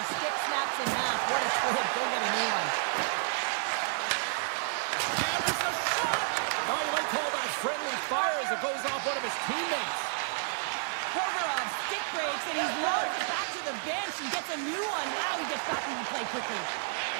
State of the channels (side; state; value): left; silent; digital silence